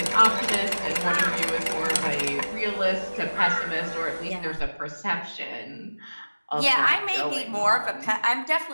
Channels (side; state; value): both; inverted; correlation -1.00